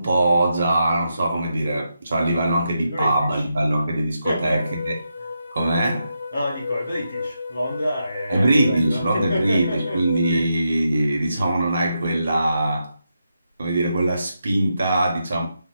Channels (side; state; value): both; inverted; correlation -0.85